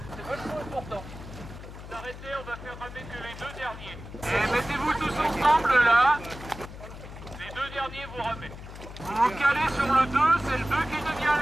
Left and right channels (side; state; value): left; noise; hum, 13 dB below the sound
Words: C'est vachement important. Arrêtez, on va faire ramer que les deux derniers. Et mettez-vous tous ensemble là. Les deux derniers, vous ramez. Vous vous calez sur le 2, c'est le 2 qui devient